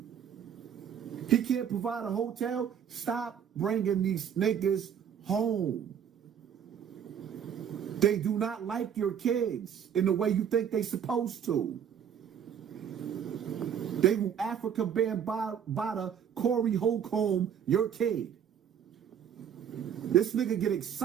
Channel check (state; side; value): quieter; left; 8.4 dB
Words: He can't provide a hotel. Stop bringing these niggas home. They do not like your kids in the way you think they supposed to. They will Africa Bambaataa, Corey Holcomb, your kid. This nigga get